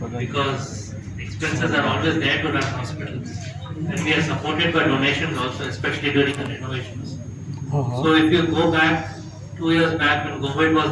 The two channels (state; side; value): identical; both; correlation 1.00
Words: because expenses are always there to run hospitals, and we are supported by donations also, especially during the renovations. So if you go back 2 years back when COVID